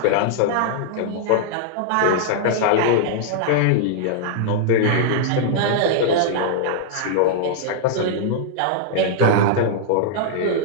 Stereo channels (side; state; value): both; different; correlation -0.01